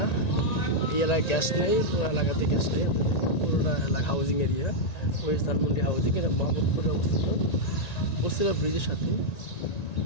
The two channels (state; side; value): late; right; 1.9 ms